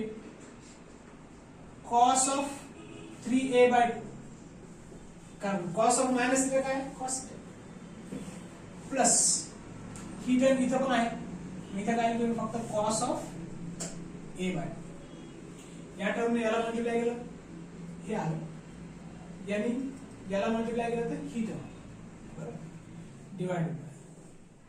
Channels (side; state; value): both; identical; correlation 1.00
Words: cos of 3a by 2 कारण cos of मायनस थीटा काय cos थीटा प्लस ही टर्म इथं पण आहे, इथं काय लिहिलं फक्त कॉस ऑफ ए बाय, या टर्मने याला मल्टिप्लाय केलं हे आलं, यांनी याला मल्टिप्लाय केलं तर ही टर्म बरोबर डिवाइडेड बाय